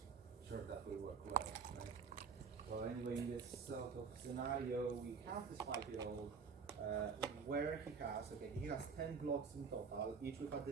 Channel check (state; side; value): quieter; left; 5.7 dB